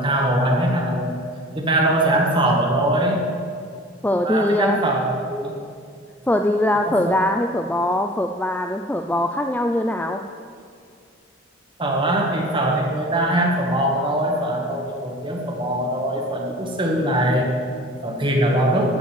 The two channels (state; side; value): normal; both; correlation 0.44